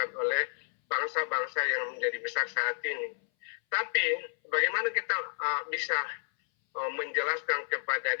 oleh bangsa-bangsa yang menjadi besar saat ini. Tapi bagaimana kita bisa menjelaskan kepada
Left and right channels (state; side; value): silent; right; 57 dB below the other